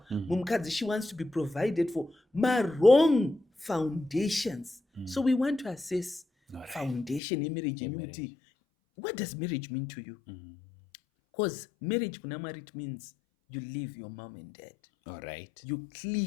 Mumukadzi she wants to be provided for. Wrong foundations. So we want to assess foundation yemarriage yemuti. What does marriage mean to you? Because marriage kuna Mwari, it means you leave your mom and dad. Alright. You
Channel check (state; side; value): drops out; right; at 7.2 s